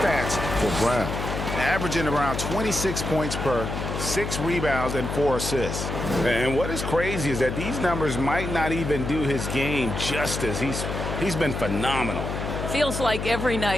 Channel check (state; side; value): noise; left; hum, 4 dB below the sound